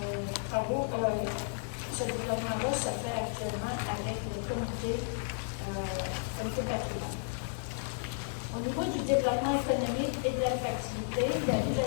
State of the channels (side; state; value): right; silent; digital silence